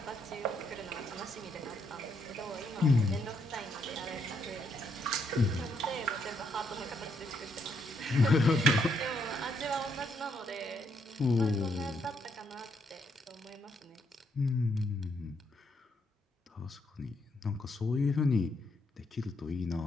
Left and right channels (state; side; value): normal; both; correlation 0.74